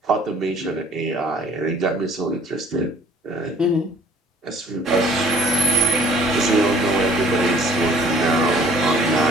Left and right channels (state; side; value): normal; both; correlation 0.54